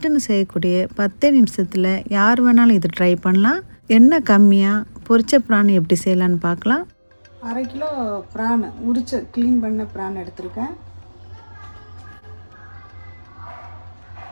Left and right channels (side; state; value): both; inverted; correlation -1.00